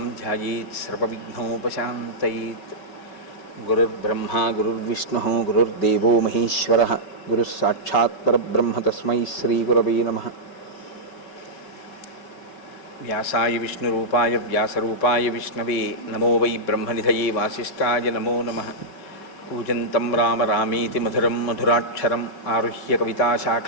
ధ్యాయేత్ సర్వవిఘ్నోపశాంతయేత్. గురుర్బ్రహ్మా గురుర్విష్ణుః గురుర్దేవో మహేశ్వరః గురుః సాక్షాత్ పరబ్రహ్మ తస్మై శ్రీగురవే నమః. వ్యాసాయ విష్ణురూపాయ వ్యాసరూపాయ విష్ణవే నమో వై బ్రహ్మనిధయే వాసిష్ఠాయ నమో నమః. కూజంతం రామ రామేతి మధురం మధురాక్షరం ఆరుహ్య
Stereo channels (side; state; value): right; late; 5.3 ms